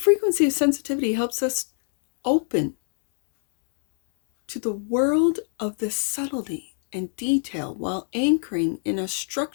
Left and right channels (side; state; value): right; silent; digital silence